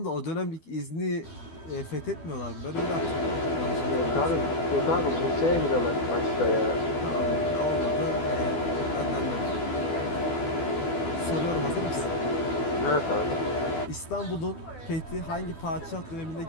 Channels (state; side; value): late; right; 12 ms